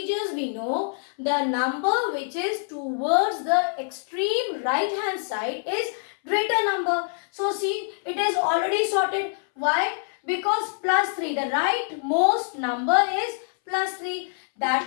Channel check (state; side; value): silent; right; 62 dB below the other